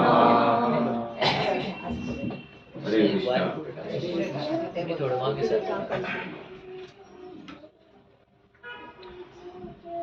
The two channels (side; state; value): both; identical; correlation 1.00